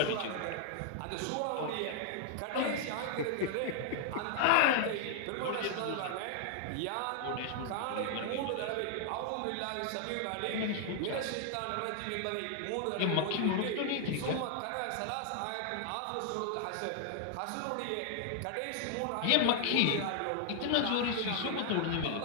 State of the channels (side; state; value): both; different; correlation 0.00